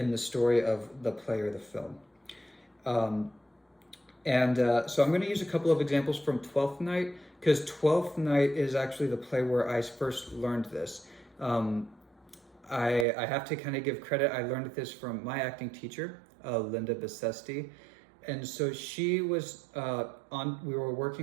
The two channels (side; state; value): left; drops out; at 13.1 s